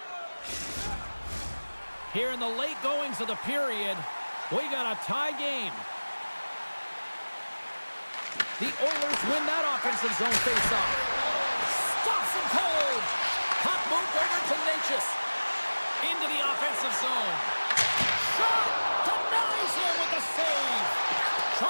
Here in the late goings of the period, we got a tie game. The Oilers win that offensive zone face-off. Stops him cold. Puck moved over to Natchez. Into the offensive zone. Shot! Denies him with the save.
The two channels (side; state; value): both; inverted; correlation -1.00